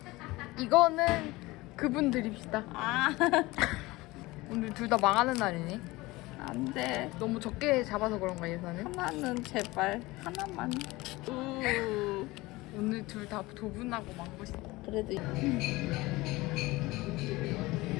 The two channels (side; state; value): right; quieter; 20.7 dB